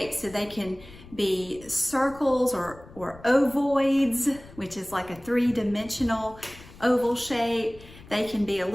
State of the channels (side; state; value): left; noise; rumble, 20 dB below the sound